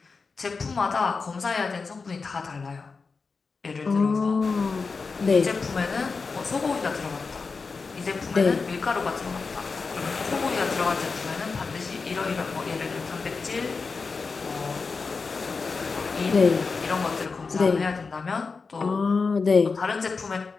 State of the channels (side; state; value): right; quieter; 4.6 dB